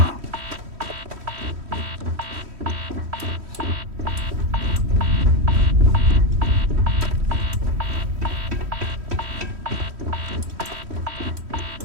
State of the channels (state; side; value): late; left; 3.1 ms